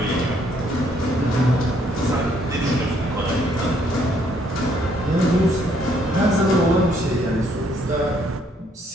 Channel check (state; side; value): normal; both; correlation 0.68